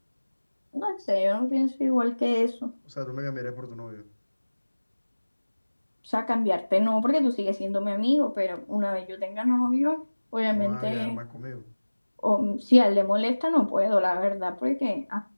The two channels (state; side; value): inverted; both; correlation -1.00